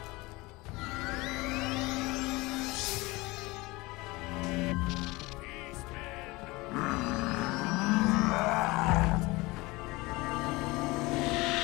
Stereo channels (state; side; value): quieter; right; 22.4 dB